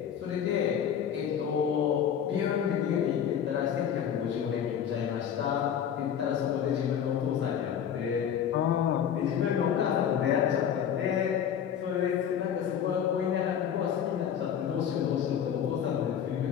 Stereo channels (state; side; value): quieter; right; 8.7 dB